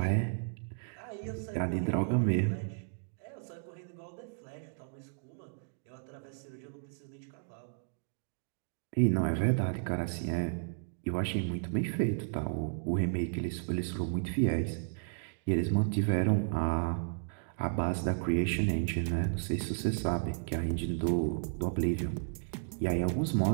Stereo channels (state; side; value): silent; left; digital silence